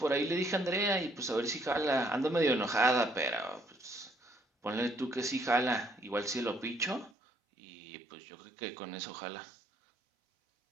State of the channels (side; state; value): left; drops out; at 7.1 s